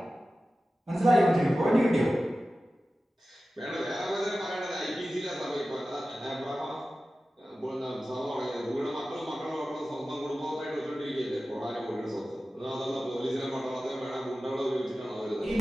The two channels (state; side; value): normal; both; correlation 0.95